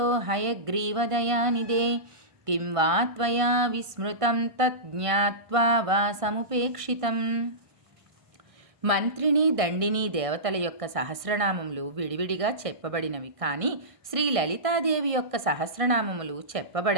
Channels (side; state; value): left; late; 1.5 ms